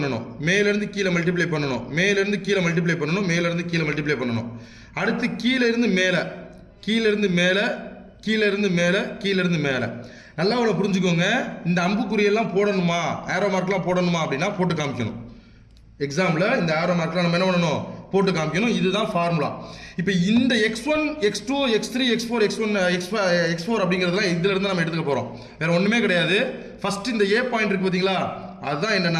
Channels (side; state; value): both; identical; correlation 1.00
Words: மேலிருந்து கீழே மல்டிப்ளை பண்ணணும், மேலிருந்து கீழே மல்டிப்ளை பண்ணணும், மேலிருந்து கீழே மல்டிப்ளை பண்ணணும். அடுத்து கீழே இருந்து மேலே, கீழே இருந்து மேலே, கீழே இருந்து மேலே, கீழே இருந்து மேலே. நல்லா அவ்வளோ புரிஞ்சுக்கோங்க. இந்த அம்புக்குறியெல்லாம் போடணுமா, ஏரோ மார்க்லாம் போடணுமா அப்படின்னா போட்டு காமிக்கணும். எக்ஸாம்பிள் இந்த ஏரோ மார்க்லாம் நம்ம என்ன பண்ணணும், போட்டு காமிக்கணும். இதுதான் ஃபார்முலா. இப்போ இந்த x1 x2 x3 x4 x1 x4 அப்படிங்கிறதுலாம் இதுல இருந்து நம்ம எடுத்துக்க போறோம், வேற ஒண்ணுமே கிடையாது. ஃபர்ஸ்ட் இந்த ஏ பாயிண்ட் இருக்கு பாத்தீங்களா, அதுதான்